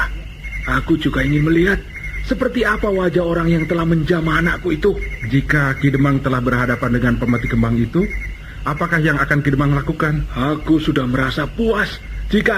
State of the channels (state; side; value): identical; both; correlation 1.00